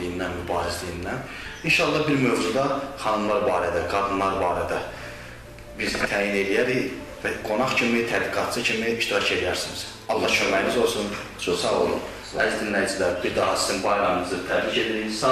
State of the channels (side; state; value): both; identical; correlation 1.00